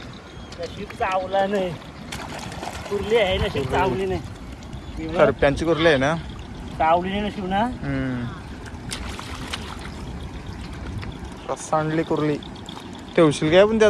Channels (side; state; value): both; identical; correlation 1.00